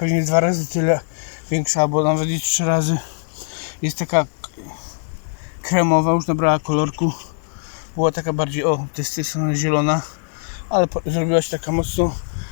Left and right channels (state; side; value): silent; right; digital silence